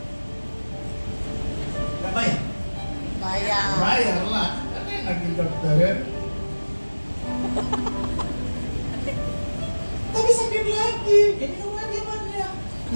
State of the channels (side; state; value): both; inverted; correlation -1.00